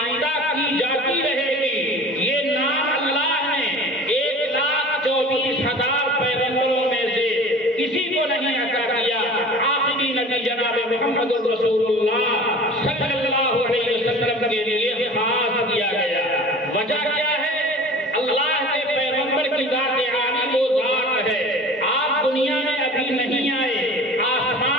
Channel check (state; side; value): normal; both; correlation 0.41